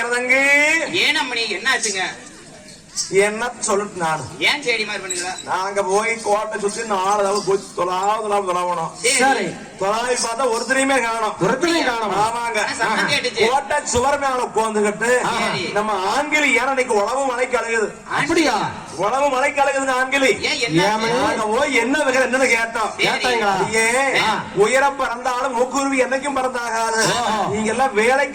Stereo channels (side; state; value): both; identical; correlation 1.00